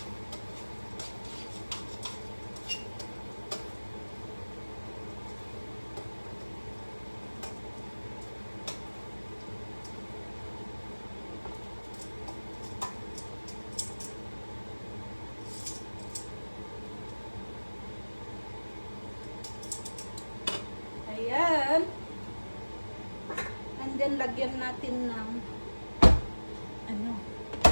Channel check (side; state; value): both; inverted; correlation -1.00